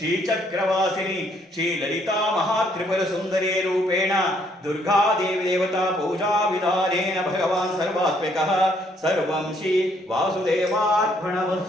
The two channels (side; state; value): both; normal; correlation 0.68